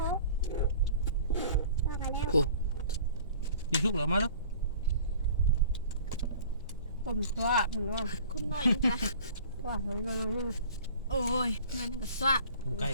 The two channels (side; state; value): both; inverted; correlation -0.46